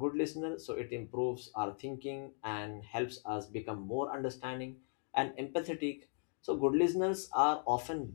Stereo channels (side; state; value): right; silent; 53 dB below the other